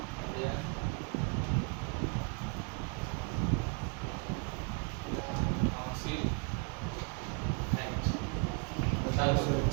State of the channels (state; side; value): quieter; left; 34.7 dB